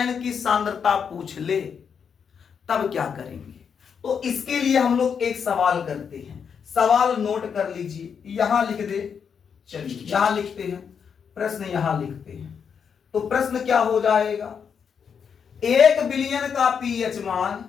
की सांद्रता पूछ ले, तब क्या करेंगे, तो इसके लिए हम लोग एक सवाल करते हैं। सवाल नोट कर लीजिए, यहां लिख दे, चलिए यहां लिखते हैं, प्रश्न यहां लिखते हैं। तो प्रश्न क्या हो जाएगा, 1 बिलियन का पीएच मान,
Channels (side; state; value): right; quieter; 6.9 dB